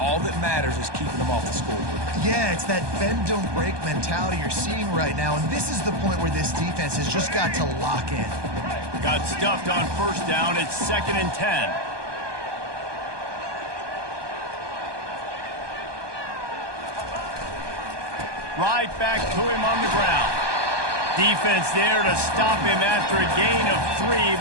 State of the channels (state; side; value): late; left; 1.2 ms